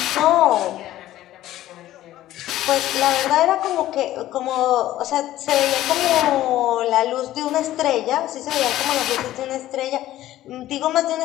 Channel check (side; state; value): right; quieter; 14.2 dB